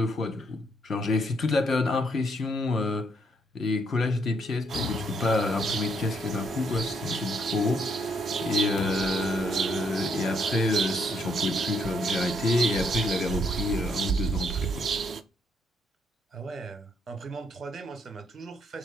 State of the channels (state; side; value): normal; both; correlation 0.73